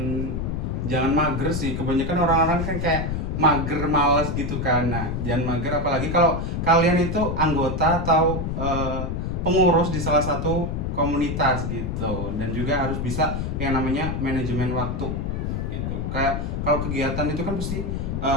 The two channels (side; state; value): left; noise; rumble, 2 dB below the sound